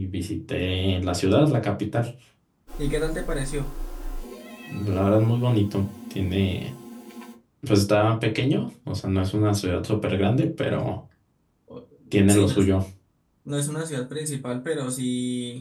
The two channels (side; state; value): both; identical; correlation 1.00